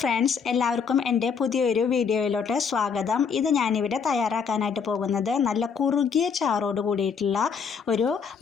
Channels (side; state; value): right; quieter; 6.2 dB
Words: എല്ലാവർക്കും എൻ്റെ പുതിയൊരു വീഡിയോയിലോട്ട് സ്വാഗതം. ഇത് ഞാനിവിടെ തയ്യാറാക്കാനായിട്ട് പോകുന്നത് നല്ല കുറുകിയ ചാറോട് കൂടിയിട്ടുള്ള ഒരു